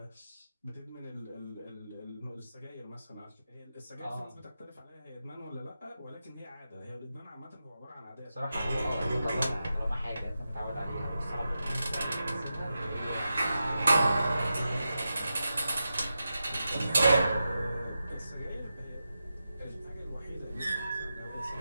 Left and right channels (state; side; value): inverted; both; correlation -0.90